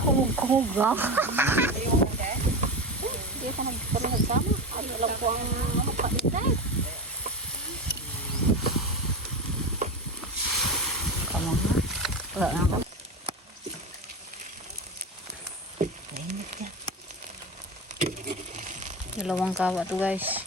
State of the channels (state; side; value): normal; both; correlation 0.23